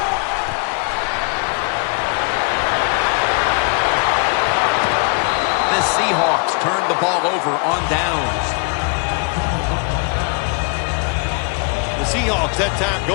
The Seahawks turn the ball over on downs. The Seahawks that time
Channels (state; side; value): quieter; right; 36.0 dB